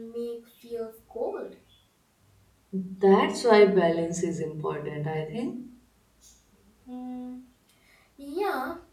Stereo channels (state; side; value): identical; both; correlation 1.00